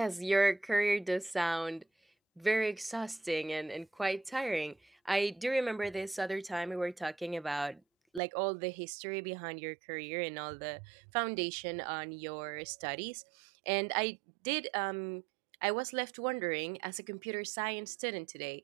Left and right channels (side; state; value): left; drops out; at 8.2 s